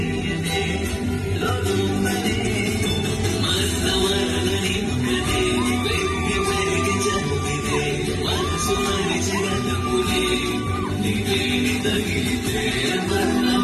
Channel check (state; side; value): identical; both; correlation 1.00